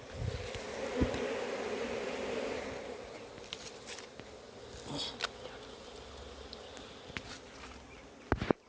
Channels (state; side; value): identical; both; correlation 1.00